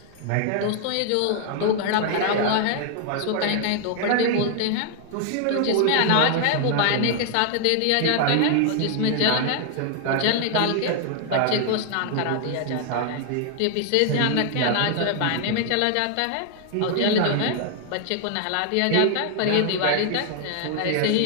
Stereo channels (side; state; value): both; different; correlation 0.00